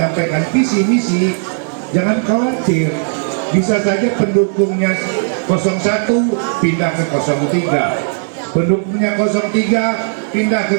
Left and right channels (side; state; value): left; silent; digital silence